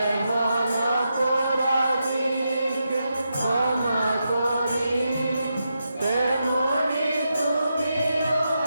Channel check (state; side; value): inverted; both; correlation -0.86